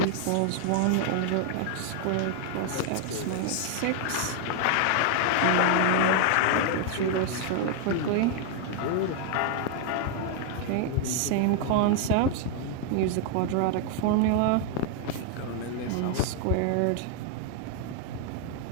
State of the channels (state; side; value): different; both; correlation 0.00